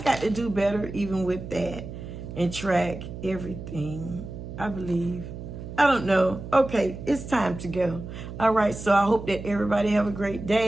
to do better even with that and track everything, I believe. I don't know. Okay, it's time to go. All right, so I hope that everybody have a great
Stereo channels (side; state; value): right; noise; hum, 10 dB below the sound